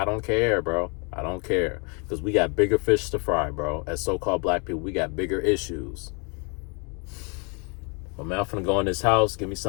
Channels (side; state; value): right; quieter; 33.8 dB